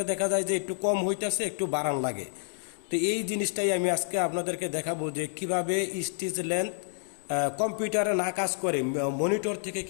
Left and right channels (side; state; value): right; silent; 59 dB below the other